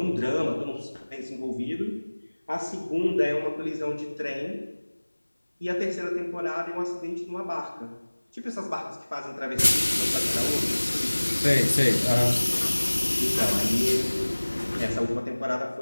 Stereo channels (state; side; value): inverted; both; correlation -1.00